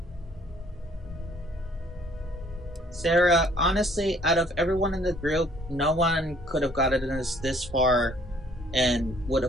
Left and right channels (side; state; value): both; normal; correlation 0.60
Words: Sarah, honestly, out of everyone in the group, no one could have gotten us this far and would